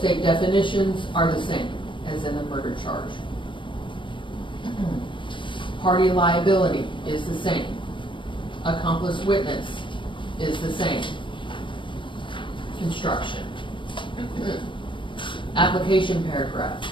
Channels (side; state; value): right; late; 0.24 ms